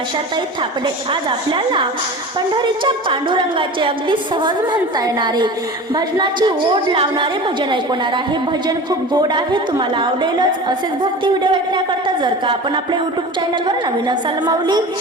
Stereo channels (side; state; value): both; normal; correlation 0.35